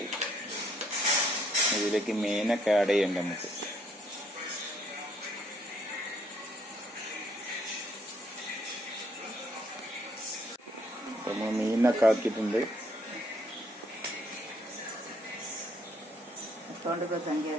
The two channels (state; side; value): normal; both; correlation 0.67